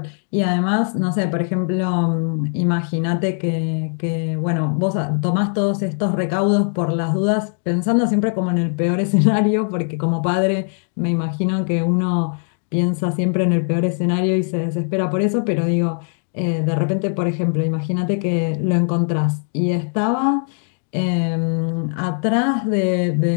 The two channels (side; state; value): right; silent; 59 dB below the other